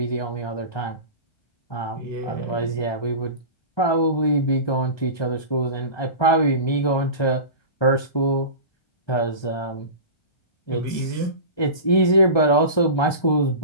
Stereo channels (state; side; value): late; right; 1.2 ms